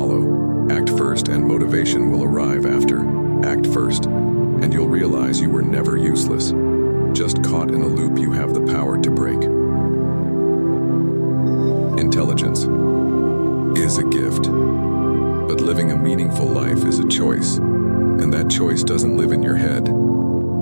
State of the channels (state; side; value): inverted; both; correlation -1.00